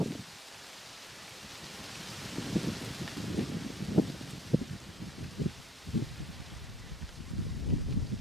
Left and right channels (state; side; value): normal; both; correlation 0.56